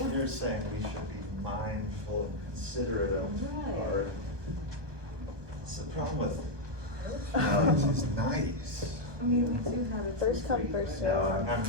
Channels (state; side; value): late; left; 1.1 ms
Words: You're saying we should be mindful and considerate of Right. our. It's the problem with. No, it's nice. I mean, we do have it First for come, free, first but- served. No, I'm